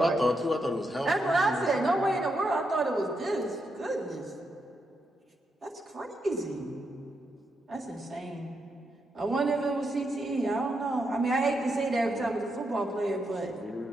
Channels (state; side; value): normal; both; correlation 0.82